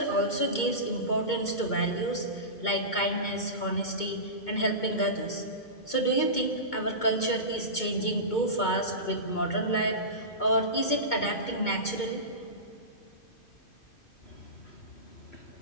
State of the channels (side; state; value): right; late; 2.2 ms